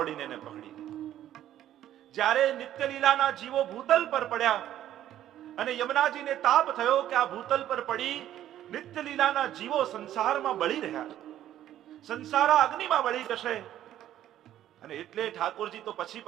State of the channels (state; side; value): quieter; left; 12.1 dB